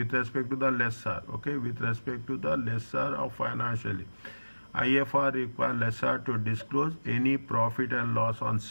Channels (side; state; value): both; inverted; correlation -1.00